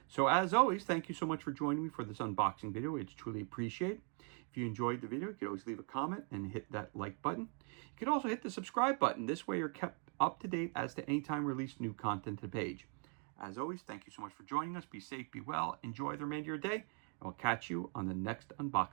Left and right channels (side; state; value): left; quieter; 39.0 dB